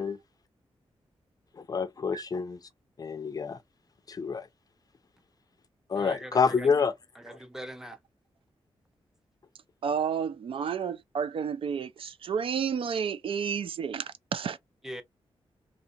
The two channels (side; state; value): both; normal; correlation 0.55